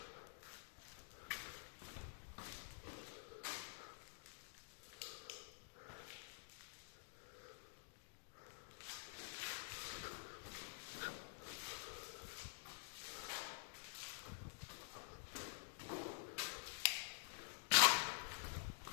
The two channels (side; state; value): right; silent; digital silence